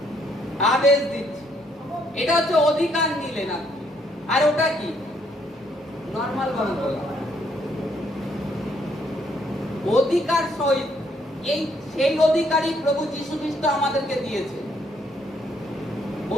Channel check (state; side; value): normal; both; correlation 0.70